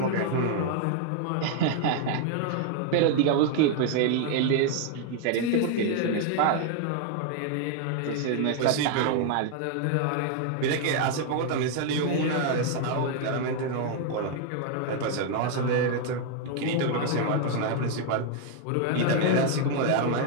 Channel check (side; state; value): both; different; correlation 0.00